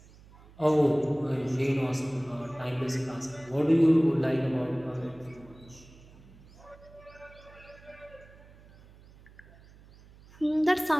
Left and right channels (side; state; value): right; noise; hum, 23 dB below the sound